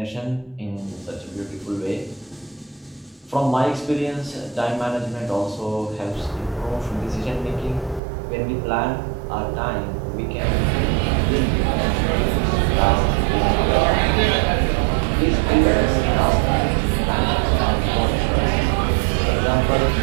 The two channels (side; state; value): left; drops out; at 8.0 s